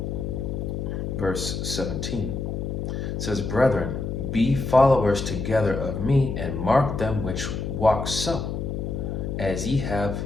Verse 17 says, brethren, be followers together of me, and mark them which walk so, as ye have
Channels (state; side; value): noise; left; hum, 3 dB below the sound